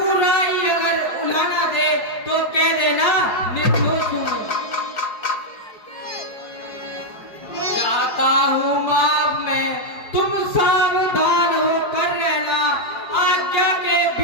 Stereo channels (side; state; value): right; late; 4.8 ms